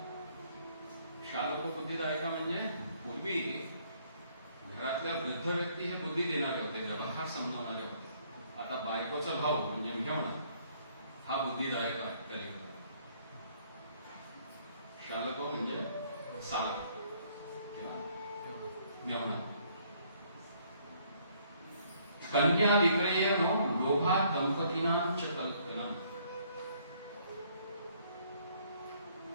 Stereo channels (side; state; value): both; inverted; correlation -0.65